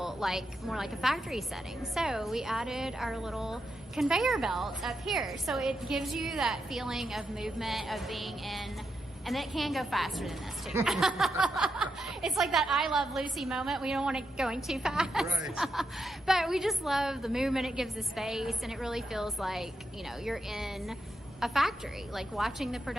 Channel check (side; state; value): both; normal; correlation 0.84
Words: more like a factory setting? So we added our little conveyor belt up here. So it gives you that feeling of movement, of being in, and it can go faster than this too. It's like that I Love Lucy moment. We don't want it going too fast. Right. But we just love the movement it gives the space, and it really feels like, you're in a factory, like watching the